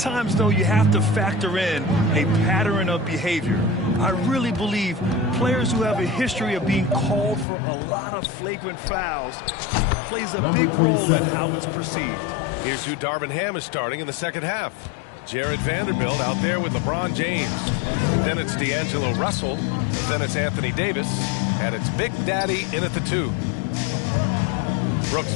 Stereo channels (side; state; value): right; drops out; at 7.5 s